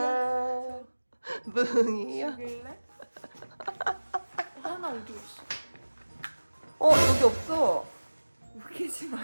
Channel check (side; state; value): both; inverted; correlation -1.00